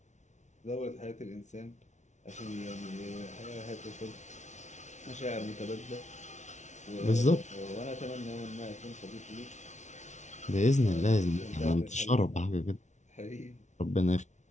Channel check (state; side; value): late; right; 0.34 ms